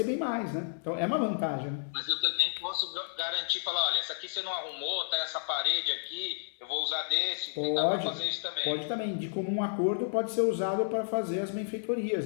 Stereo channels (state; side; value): silent; right; 57 dB below the other